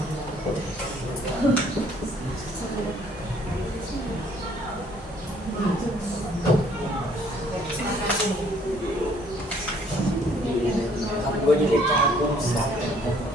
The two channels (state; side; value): normal; both; correlation 0.61